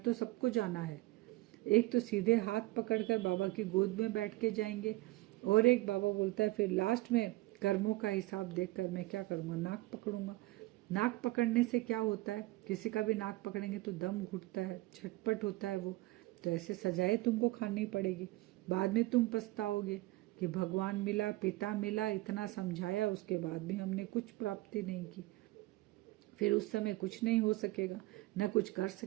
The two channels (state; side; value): quieter; left; 19.7 dB